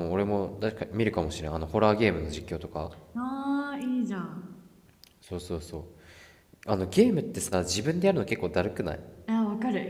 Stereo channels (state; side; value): identical; both; correlation 1.00